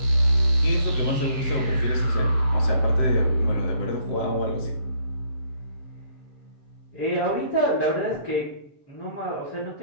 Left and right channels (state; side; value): late; right; 7.7 ms